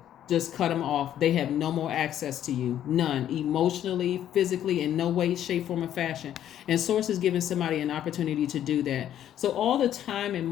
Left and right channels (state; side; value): quieter; right; 11.0 dB